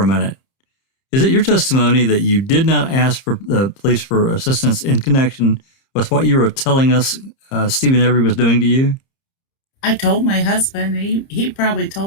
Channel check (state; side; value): late; right; 30 ms